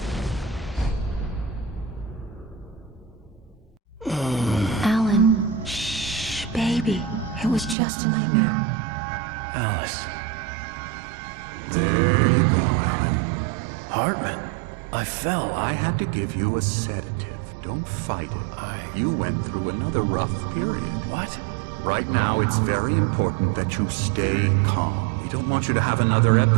Alan, shh, baby. It was just a nightmare. Alice. There you go, Alan. Hartman. I fell. I had to give you a sedative. Don't fight it. You went through another rough period. What? Right now, it's very important that you stay calm. We don't want you to have another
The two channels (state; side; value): drops out; left; at 7.8 s